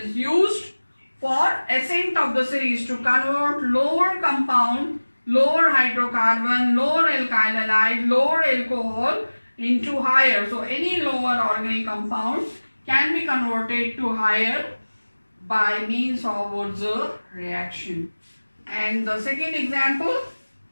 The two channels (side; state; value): both; inverted; correlation -1.00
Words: used For ascent of the series to convert lower compound, lower hydrocarbon, lower alkyl halide, lower alcohol into higher. So any lower organic compound can be converted to higher by means of Wurtz reaction. And the second example,